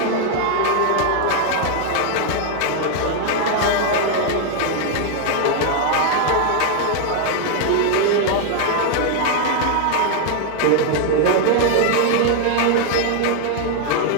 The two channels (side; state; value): both; different; correlation 0.00